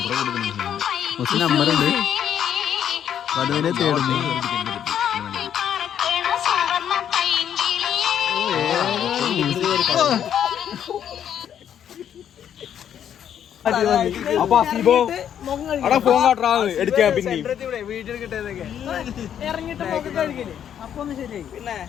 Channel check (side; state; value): right; quieter; 9.4 dB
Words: മൂസിന് നമ്പറുണ്ട് വധുവിനെ തേടുന്നു അപ്പൊ അസീബോ അവിടെ ഫോൺ കാട്ടാ എടുക്കാൻ പിന്നെ